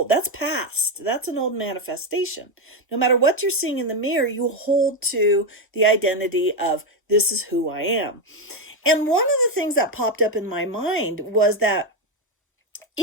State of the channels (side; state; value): both; normal; correlation 0.08